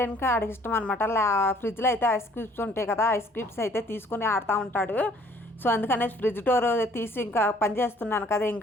ఇంకా ఆడికి ఇష్టం అనమాట. ఫ్రిడ్జ్లో అయితే ఐస్ క్యూబ్స్ ఉంటాయి కదా, ఐస్ క్యూబ్స్ అయితే తీసుకుని ఆడుతూ ఉంటాడు. సో అందుకనే ఫ్రిడ్జ్ డోర్ తీసి ఇంకా పని చేస్తున్నాను కదా,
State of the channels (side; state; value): both; normal; correlation 0.58